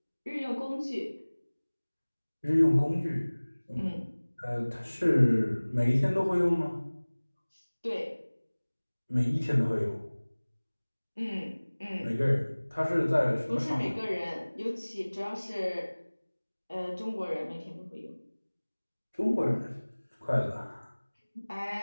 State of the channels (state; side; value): inverted; both; correlation -1.00